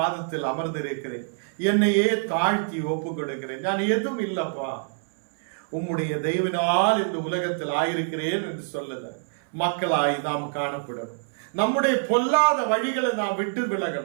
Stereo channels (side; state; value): left; silent; 61 dB below the other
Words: அமர்ந்திருக்கிறேன், என்னையே தாழ்த்தி ஒப்பு கொடுக்கிறேன், நான் எதுவும் இல்லப்பா, உம்முடைய தெய்வனால் இந்த உலகத்தில் ஆயிருக்கிறேன் என்று சொல்லுத மக்களாய் நாம் காணப்படணும். நம்முடைய பொல்லாத வழிகளை நாம் விட்டு